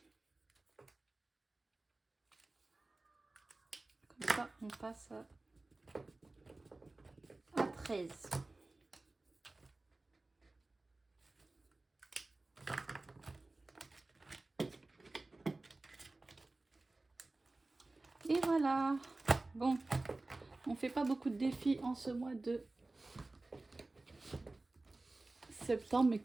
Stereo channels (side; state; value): left; quieter; 3.1 dB